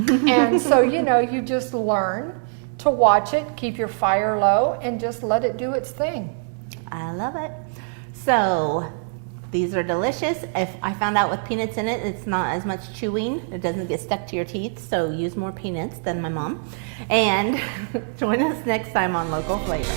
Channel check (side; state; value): left; silent; digital silence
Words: And so, you know, you just learn to watch it, keep your fire low, and just let it do its thing. I love it. So these are delicious. If I found out with peanuts in it, it's not as much chewing. It doesn't get stuck to your teeth, so use more peanuts than my mom. And join us next time on Local